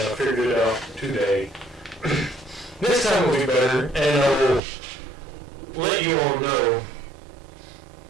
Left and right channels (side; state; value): left; drops out; at 4.6 s